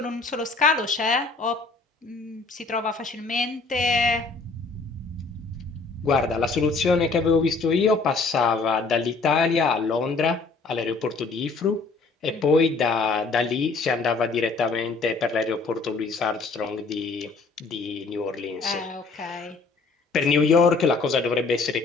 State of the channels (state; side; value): quieter; right; 4.0 dB